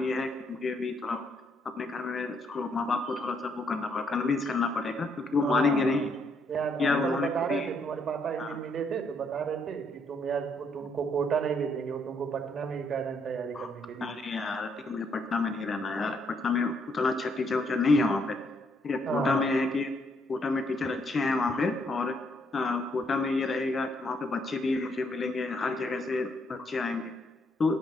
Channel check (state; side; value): normal; both; correlation 0.72